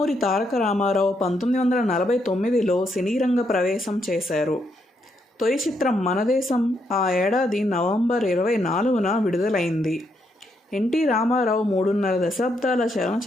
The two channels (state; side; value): normal; both; correlation 0.77